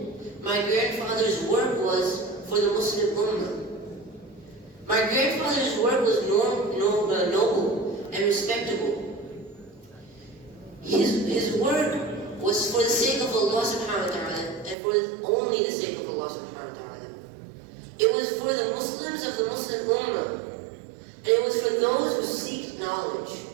my grandfather's work was for the Muslim Ummah. My grandfather's work was noble and respectable. His work was for the sake of Allah subhanahu wa ta'ala, and for only the sake of Allah subhanahu wa ta'ala. It was for the Muslims of the Muslim Ummah, and it was for those who seek knowledge.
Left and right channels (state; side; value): drops out; left; at 14.8 s